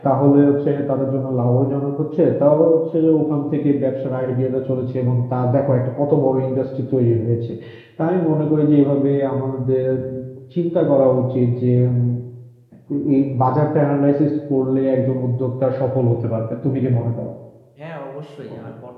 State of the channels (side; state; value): both; identical; correlation 1.00